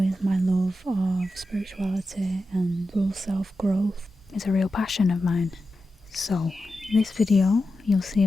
my love of spirituality and full self-growth is a real passion of mine. So this video you'll see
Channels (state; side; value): normal; both; correlation 0.91